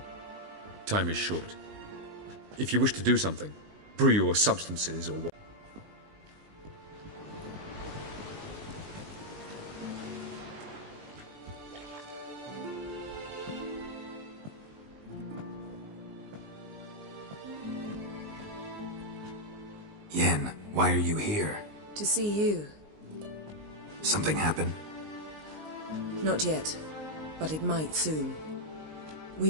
Time is short. If you wish to do something, brew your substances or what. Yen, why are you here? To see you. Something happened? Not yet, but it might soon. We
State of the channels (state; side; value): late; left; 19 ms